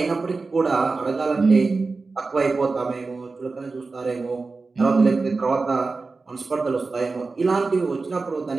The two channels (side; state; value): left; quieter; 4.0 dB